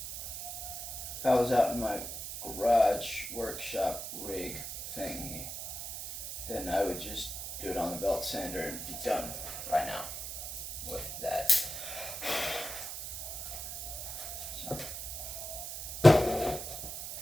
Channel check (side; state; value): right; noise; hiss, 7 dB below the sound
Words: If I was out in my garage workshop rig thingy, then I would just do it on the belt sander and be done right now with that. So.